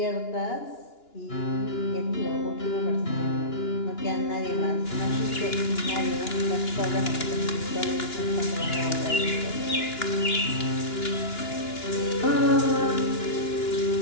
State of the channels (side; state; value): right; late; 2.9 ms